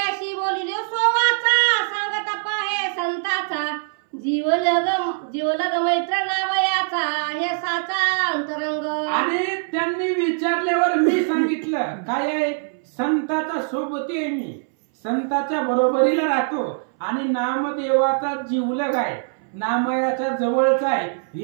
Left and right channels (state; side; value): silent; left; 61 dB below the other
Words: बोलिले सोवाचा सांगत पाहे संताचा, जीवलग मैत्र नावयाचा हे साचा अंतरंग. आणि त्यांनी विचारल्यावर मी सांगितलं काय आहे, संताचा सोबती आहे, मी संताच्या बरोबरीला राहतो आणि नामदेवाचा जीवलग आहे, नामयाच्या जवळचा आहे,